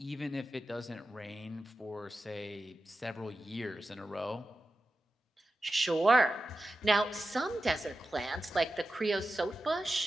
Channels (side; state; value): both; normal; correlation 0.92